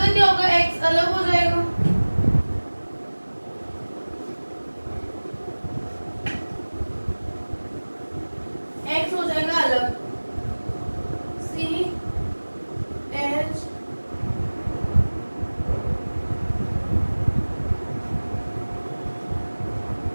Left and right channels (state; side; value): inverted; both; correlation -1.00